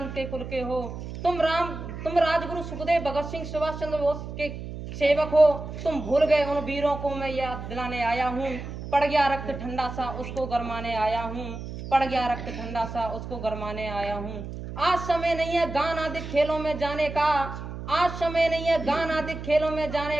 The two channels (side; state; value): right; noise; hum, 9 dB below the sound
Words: के कुल के हो, तुम राजगुरु सुखदेव भगत सिंह सुभाष चंद्र बोस के सेवक हो, तुम भूल गए उन वीरों को मैं याद दिलाने आया हूँ। पड़ गया रक्त ठंडा सा उसको गरमाने आया हूँ। पड़ गया रक्त ठंडा सा उसको गरमाने आया हूँ। आज समय नहीं है गान आदि खेलों में जाने का। आज समय नहीं है गान आदि खेलों में